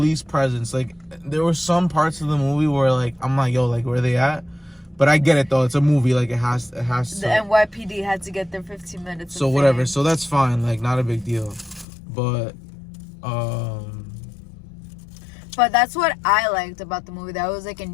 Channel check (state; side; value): drops out; right; at 11.9 s